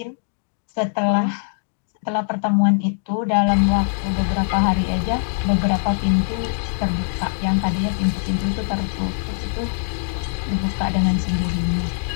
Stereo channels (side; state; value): right; silent; digital silence